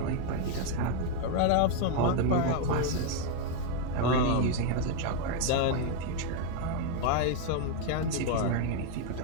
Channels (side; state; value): both; different; correlation 0.01